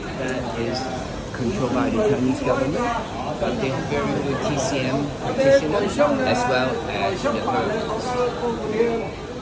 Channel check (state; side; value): identical; both; correlation 1.00